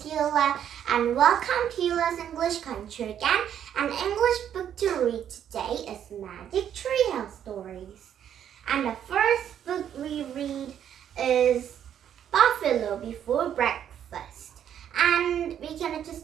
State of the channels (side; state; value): left; quieter; 9.6 dB